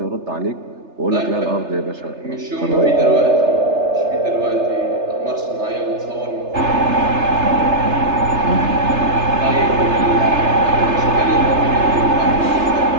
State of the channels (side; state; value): left; late; 3.3 ms